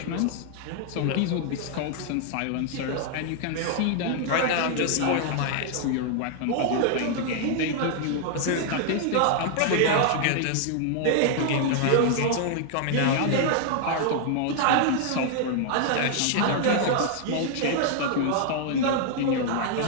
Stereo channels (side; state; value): both; different; correlation 0.00